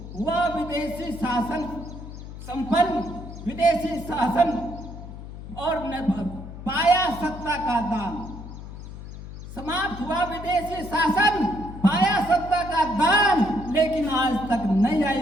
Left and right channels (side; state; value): left; noise; hum, 12 dB below the sound